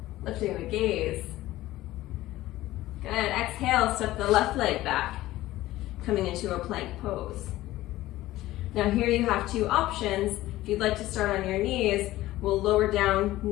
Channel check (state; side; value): quieter; right; 16.2 dB